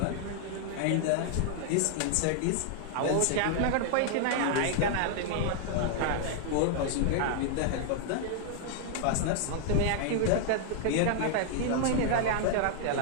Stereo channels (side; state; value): both; different; correlation 0.00